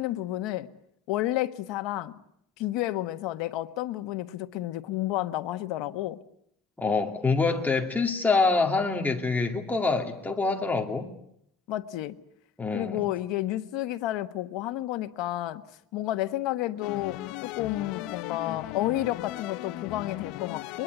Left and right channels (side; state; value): right; quieter; 6.7 dB